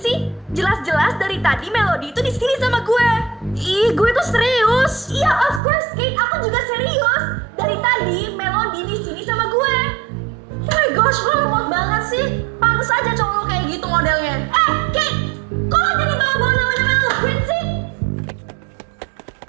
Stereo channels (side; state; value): left; drops out; at 5.6 s